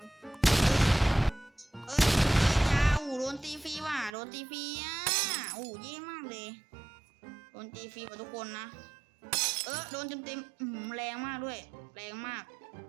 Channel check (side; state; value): left; drops out; at 4.2 s